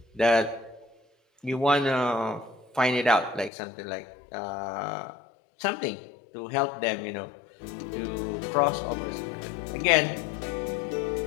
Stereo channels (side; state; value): right; drops out; at 3.5 s